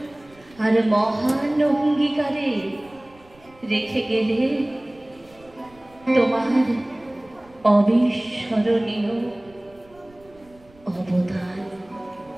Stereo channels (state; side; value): noise; right; rumble, 28 dB below the sound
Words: আর মহান অঙ্গীকারে রেখে গেলে তোমার অবিস্মরণীয় অবদান।